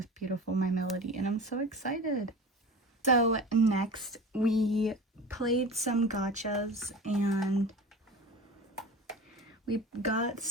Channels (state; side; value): normal; both; correlation 0.35